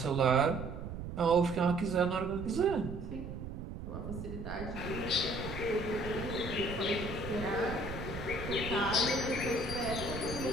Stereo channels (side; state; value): right; noise; rumble, 8 dB below the sound